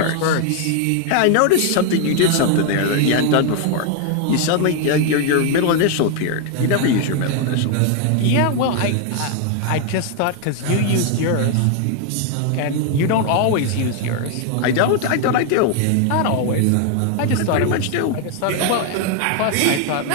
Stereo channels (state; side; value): different; both; correlation 0.00